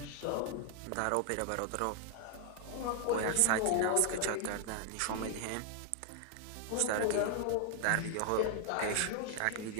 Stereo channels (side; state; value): both; different; correlation 0.00